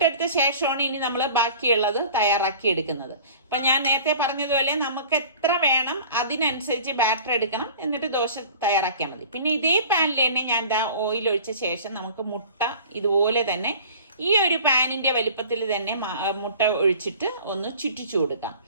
ശേഷമാണ് ഇനി നമ്മൾ ബാക്കിയുള്ളത് തയ്യാറാക്കി എടുക്കുന്നത്. അപ്പൊ ഞാൻ നേരത്തെ പറഞ്ഞതുപോലെ നമുക്ക് എത്ര വേണം അതിനനുസരിച്ച് ബാറ്റർ എടുക്കണം, എന്നിട്ട് ദോശ തയ്യാറാക്കിയാൽ മതി. പിന്നെ ഇതേ പാനിൽ തന്നെ ഞാൻ ഓയിൽ ഒഴിച്ച ശേഷം നമുക്ക് മുട്ട ഇതുപോലെ തന്നെ ഈ ഒരു പാനിന്റെ വലിപ്പത്തിൽ തന്നെ മുട്ട ഒഴിച്ചിട്ട് ഒന്ന് ചുറ്റിച്ചു കൊടുക്കാം.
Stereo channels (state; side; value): inverted; both; correlation -0.44